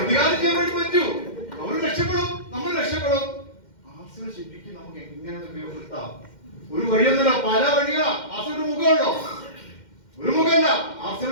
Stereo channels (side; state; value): right; late; 2.1 ms